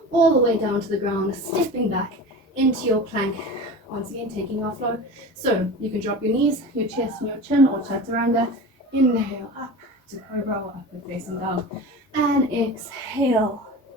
all the way down to the ground, stepping back into your plank. Once again, taking our flow. So you can drop your knees, your chest and your chin, or chaturanga. Inhale up to cobra or upward facing dog. And exhale,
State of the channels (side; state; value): both; normal; correlation 0.32